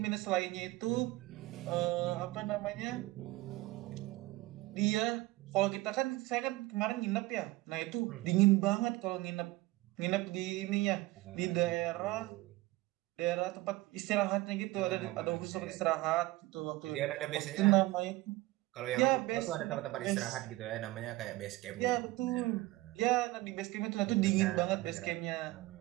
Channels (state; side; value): quieter; left; 19.0 dB